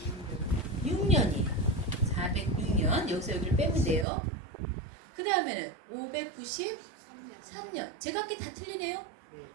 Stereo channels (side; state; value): left; drops out; at 4.0 s